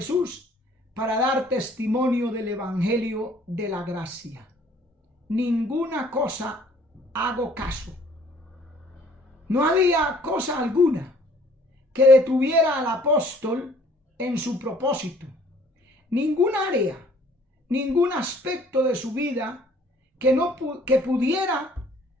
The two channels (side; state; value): both; normal; correlation 0.57